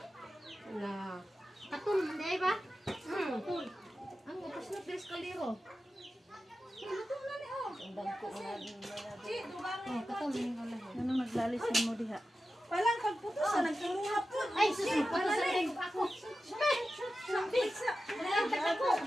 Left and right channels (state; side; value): normal; both; correlation 0.93